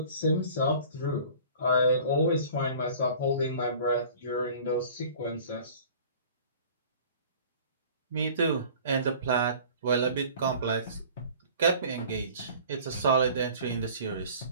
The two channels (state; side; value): inverted; both; correlation -0.47